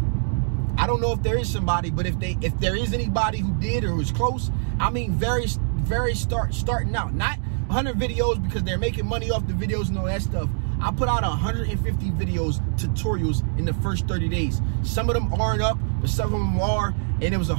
I don't know if there is somebody, but if there is anybody who did or was close, I mean starting out. Not 100 videos because they're making money off the videos and all that stuff. I put out 150 videos, tutorials in the first 30 days. Some of them aren't up, but some of them are. And it was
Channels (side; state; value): left; silent; digital silence